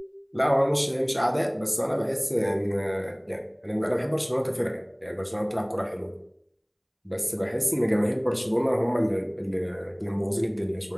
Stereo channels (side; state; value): both; identical; correlation 1.00